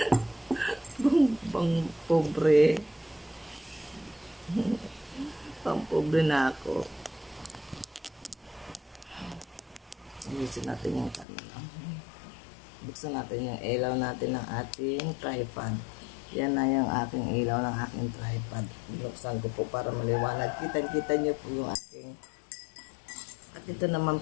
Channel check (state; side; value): drops out; right; at 11.2 s